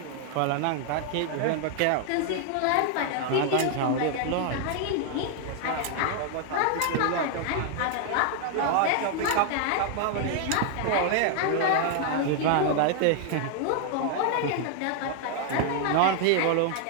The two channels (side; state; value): both; different; correlation 0.00